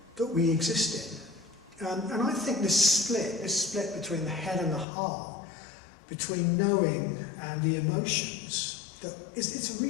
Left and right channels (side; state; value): right; drops out; at 4.9 s